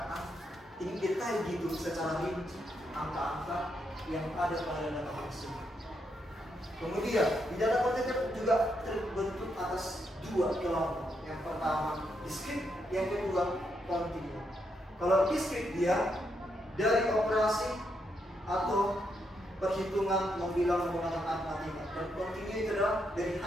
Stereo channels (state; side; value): normal; both; correlation 0.79